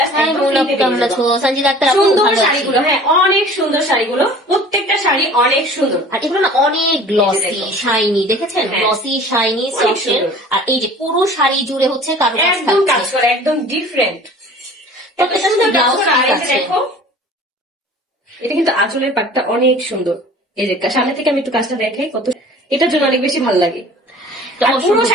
সুন্দর শাড়িগুলো। হ্যাঁ অনেক সুন্দর শাড়িগুলো, প্রত্যেকটা শাড়ি অনেক সুন্দর। আর এগুলো না অনেক গ্লসি শাইনি, দেখেছেন গ্লসি শাইনি সফট। আর এই যে পুরো শাড়ি জুড়ে হচ্ছে কারুকাজ একদম কাজ করা, একদম ডিফারেন্ট। দেখো এটা কিন্তু আঁচলের পাটটা অনেক সুন্দর। এই যে সামনে থেকে আমি একটু কাজটা দেখাই, কত এটার জন্য অনেক বেশি ভালো লাগে। পুরো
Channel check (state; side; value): normal; both; correlation 0.45